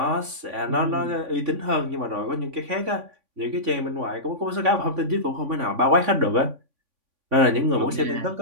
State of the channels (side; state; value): left; late; 3.5 ms